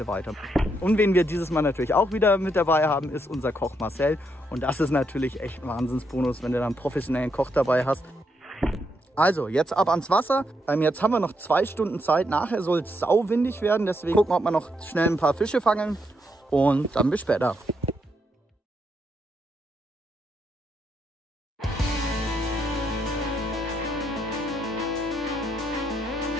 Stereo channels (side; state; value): both; normal; correlation 0.78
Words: weiter. Und wen wir dieses Mal natürlich auch wieder mit dabei haben, ist unser Koch Marcel. Und das ist natürlich echt ein Wahnsinnsbonus, wenn du dann einen professionellen Koch dabei hast. Also, jetzt ab ans Wasser. Jetzt haben wir noch 2 Stunden Zeit. Nachher soll es sauwindig werden. Deswegen gucken wir, ob wir noch schnell ein paar Fische fangen. Und dann bis später.